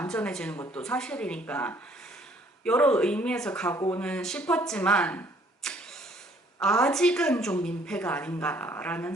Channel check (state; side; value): normal; both; correlation 0.61